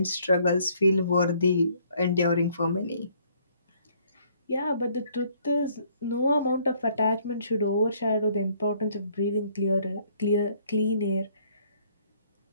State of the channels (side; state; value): both; inverted; correlation -0.64